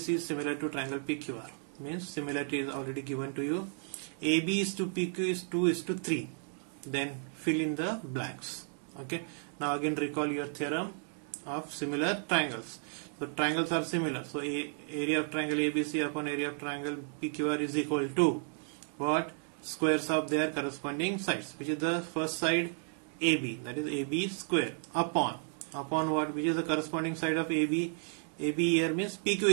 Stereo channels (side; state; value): left; silent; 56 dB below the other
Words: is similar to triangle PQR, means similarity is already given to you. AB is to PQ is 2 is to 3. Then fill in the blanks. Okay. Now again recall your theorem of similar triangles. So triangles are similar. So area of triangle ABC upon area of triangle PQR is equal to what? Squares of their corresponding sides, which is the first side AB, that is AB square, upon what, which is the corresponding side of AB. AB here means PQ